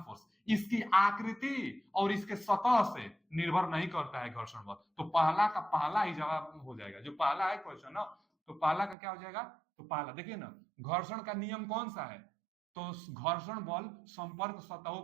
force. इसकी आकृति और इसके सतह से निर्भर नहीं करता है घर्षण बल, तो पहला का पहला ही जवाब हो जाएगा। जो पहला है क्वेश्चन ना, तो पहला का क्या हो जाएगा? तो पहला देखिए ना, घर्षण का नियम कौन सा है? तो घर्षण बल संपर्क सतहों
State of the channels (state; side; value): drops out; left; at 9.0 s